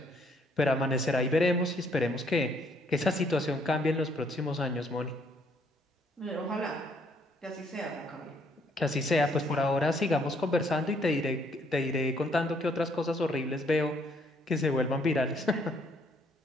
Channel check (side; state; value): both; normal; correlation 0.67